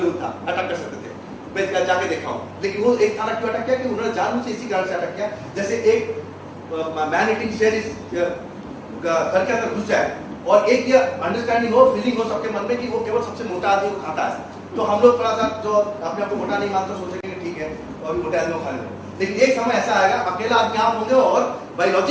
था, अटक कर सकते थे। मैं जाके देखा हूं, लेकिन वो एक थाना क्यों अटक किया कि उन्होंने जानबूझ से इसी कारण से अटक किया, जैसे एक मैन ईटिंग शेर इस घर के अंदर घुस जाए और एक ये अंडरस्टैंडिंग हो, फीलिंग हो सबके मन में कि वो केवल सबसे मोटा आदमी को खाता है। तो हम लोग थोड़ा सा जो अपने आप को मोटा नहीं मानते सोचेंगे ठीक है और मोटे आदमी को खा लेंगे, लेकिन एक समय ऐसा आएगा अकेला आदमी आप होंगे और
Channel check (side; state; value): both; identical; correlation 1.00